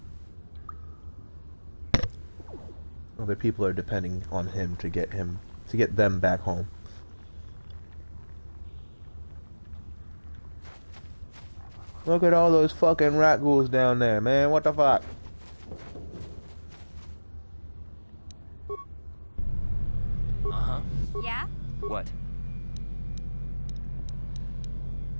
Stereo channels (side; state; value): both; inverted; correlation -1.00